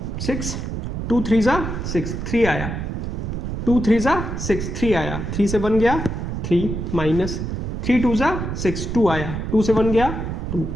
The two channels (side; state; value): right; noise; rumble, 4 dB below the sound